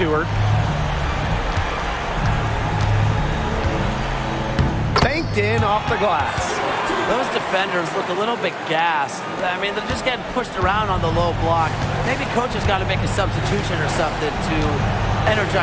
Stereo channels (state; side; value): identical; both; correlation 1.00